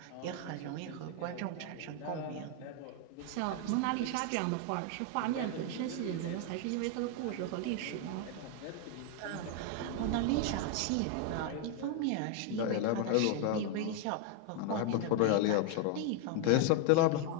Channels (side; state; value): both; different; correlation 0.01